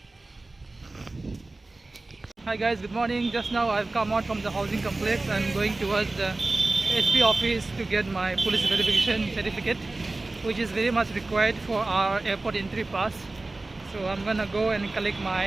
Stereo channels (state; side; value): quieter; left; 3.1 dB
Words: Hi guys, good morning. Just now I've come out from the housing complex. I'm going towards the SP office to get my police verification certificate, which is very much required for our airport entry pass. So I'm gonna go and collect